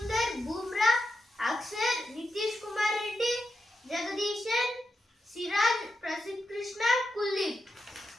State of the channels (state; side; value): normal; both; correlation 0.88